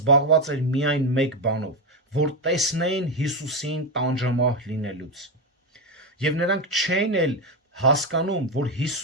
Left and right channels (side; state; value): both; normal; correlation 0.10